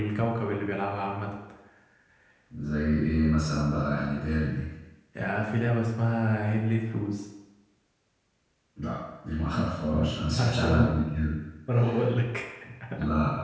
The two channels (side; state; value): both; identical; correlation 1.00